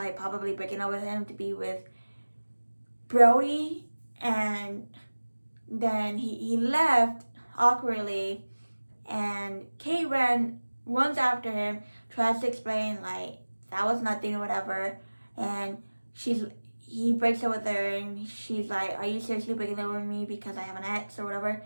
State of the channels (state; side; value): inverted; both; correlation -1.00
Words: probably breaking up with him to be with Brody. And then he left awkwardly, and Kate runs after him, tries to explain like that was nothing or whatever, and he breaks up with her, and she's like, are you seriously breaking up with me because I have an ex or whatever?